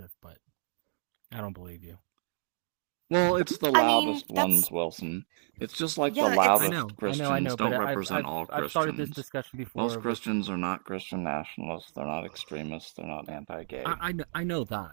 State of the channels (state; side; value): silent; left; digital silence